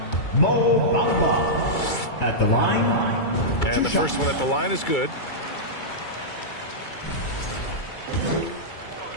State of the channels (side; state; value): right; late; 2.3 ms